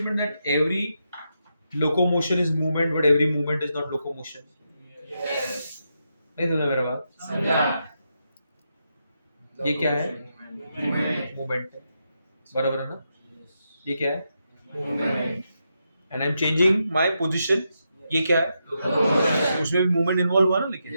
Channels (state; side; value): inverted; both; correlation -0.84